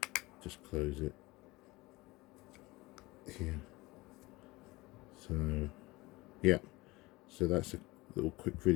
Just close it here. So yeah, so that's a little quick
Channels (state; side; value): quieter; right; 21.6 dB